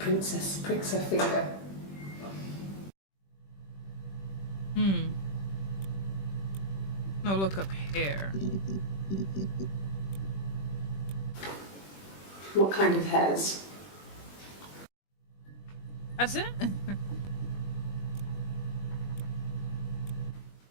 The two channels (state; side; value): late; right; 21 ms